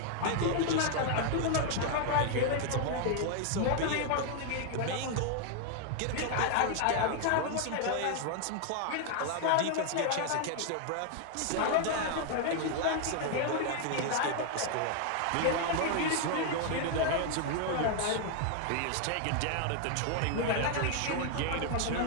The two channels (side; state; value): both; different; correlation 0.00